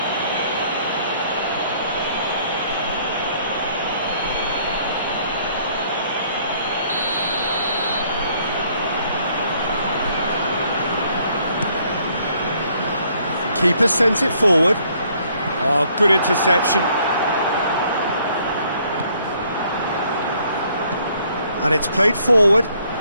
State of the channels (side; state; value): both; inverted; correlation -0.65